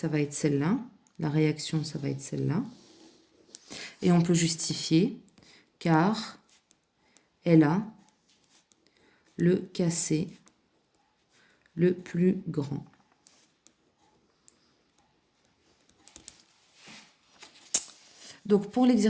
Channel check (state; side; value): identical; both; correlation 1.00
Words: va être celle-là. La réaction, ça va être celle-là. Et on peut justifier car elle a le Kc le plus grand. Donc pour